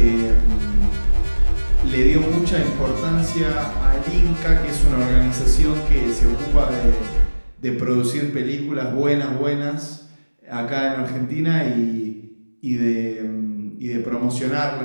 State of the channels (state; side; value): inverted; both; correlation -1.00